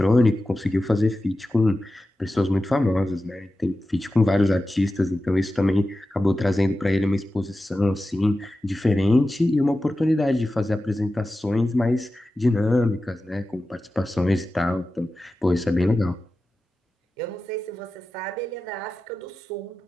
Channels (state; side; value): normal; both; correlation 0.93